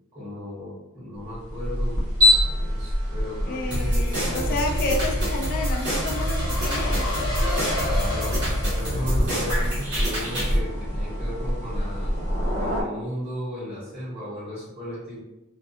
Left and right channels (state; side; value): normal; both; correlation 0.60